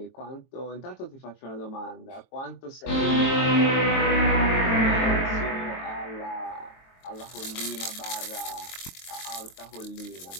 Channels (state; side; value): late; right; 22 ms